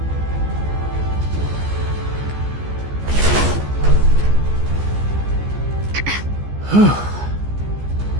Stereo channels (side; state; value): left; late; 14 ms